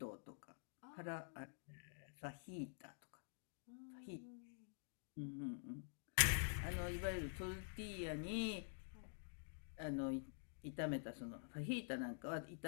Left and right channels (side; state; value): right; silent; digital silence